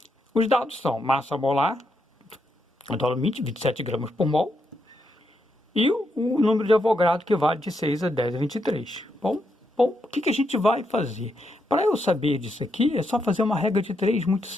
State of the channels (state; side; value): normal; both; correlation 0.81